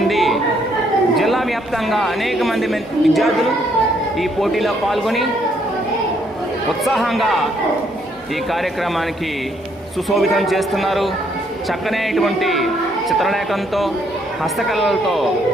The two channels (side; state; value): both; normal; correlation 0.70